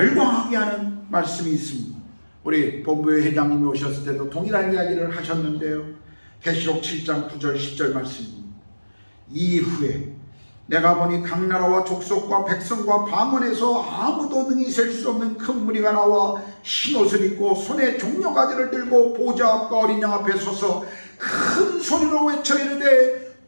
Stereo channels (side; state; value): both; inverted; correlation -1.00